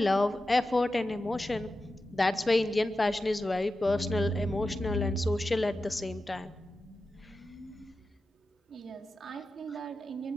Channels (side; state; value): both; normal; correlation 0.92